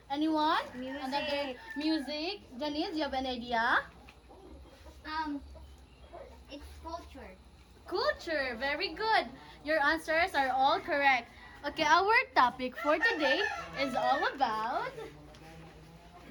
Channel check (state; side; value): identical; both; correlation 1.00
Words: Anyone? Music. Another music. Janice, you have an idea? It's culture. Culture. Very good. Your answers are all correct. Okay, our topic for today is all about.